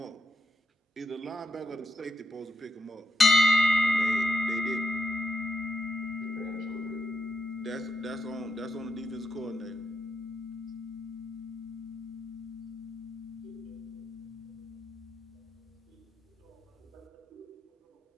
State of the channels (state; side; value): normal; both; correlation 0.83